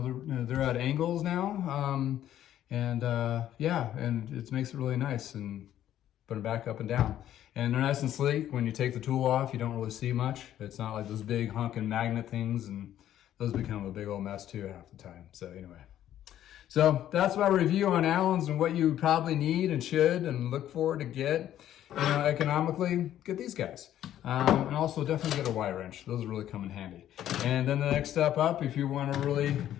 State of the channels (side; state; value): right; quieter; 11.7 dB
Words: at angles now, and it makes it really nice, and put them back up and down. And they're nice and sleek. When you take the tool off, you don't really see much. It's not like those big honking magnet things, and those become a big old mess too half the time. So anyway. So that's my review on Allens and what you probably need and should and look for to get. economically, get these guys. And also definitely get a Y wrench. Those really come in handy. And then the next step up, if you want to really